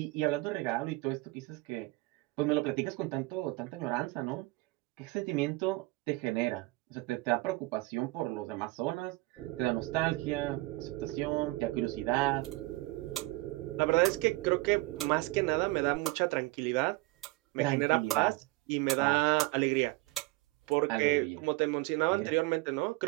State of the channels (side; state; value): left; quieter; 22.0 dB